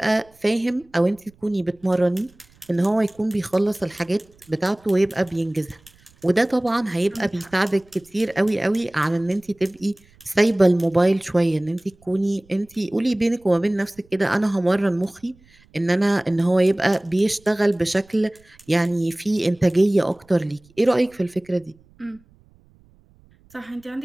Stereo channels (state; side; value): noise; right; rumble, 30 dB below the sound